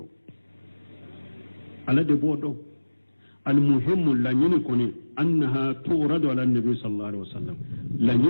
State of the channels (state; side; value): inverted; both; correlation -1.00